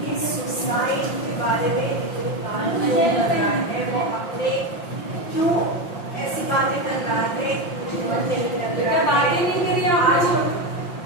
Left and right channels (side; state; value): right; late; 5.7 ms